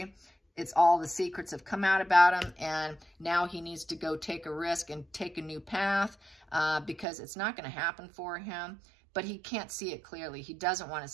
It's all the secrets have come out about him, and now he needs to go take a risk and take a new path because it's not going to happen for him, but he can't see it clearly. He doesn't want to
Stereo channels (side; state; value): left; drops out; at 7.1 s